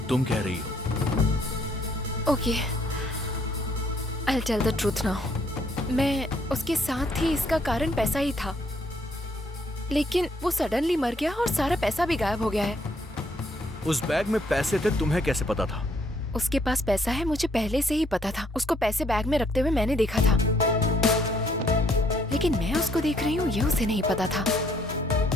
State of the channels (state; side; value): normal; both; correlation 0.67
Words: तुम कह रही हो। Okay, I will tell the truth now. मैं उसके साथ थी, इसका कारण पैसा ही था, लेकिन वो सडनली मर गया और सारा पैसा भी गायब हो गया है। उस बैग में पैसे थे, तुम्हें कैसे पता था? उसके पास पैसा है, मुझे पहले से ही पता था। उसको पैसे बैग में रखते हुए मैंने देखा था, लेकिन मैं उसको देख रही हूँ ये उसे नहीं पता था।